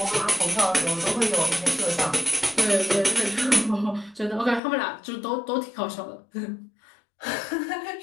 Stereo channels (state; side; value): drops out; right; at 4.6 s